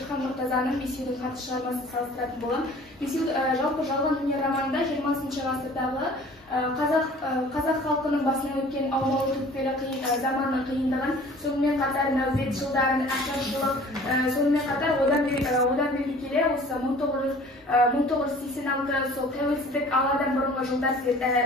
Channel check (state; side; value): normal; both; correlation 0.48